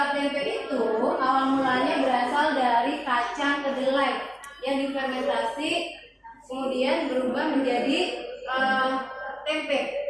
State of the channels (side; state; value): both; identical; correlation 1.00